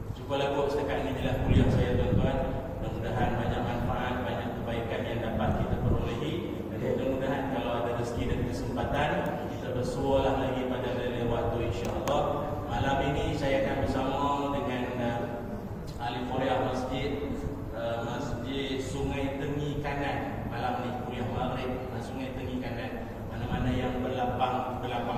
Cubalah buat setakat ini adalah kuliah saya tuan-tuan. Mudah-mudahan banyak manfaat, banyak kebaikan yang dapat kita perolehi. Dan mudah-mudahan kalau ada rezeki dan kesempatan, kita bersualah lagi pada lain waktu insya-Allah. Malam ini saya akan bersama dengan ahli Korea Masjid Sungai Tengi Kanan. Malam ni kuliah maghrib Sungai Tengi Kanan. Mana-mana yang berlapang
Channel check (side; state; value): both; identical; correlation 1.00